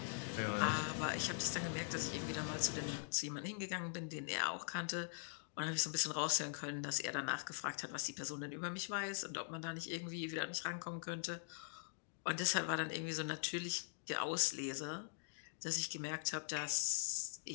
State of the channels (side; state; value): right; silent; digital silence